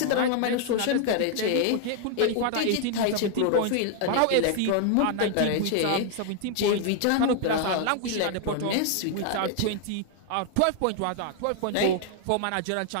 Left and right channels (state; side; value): different; both; correlation 0.00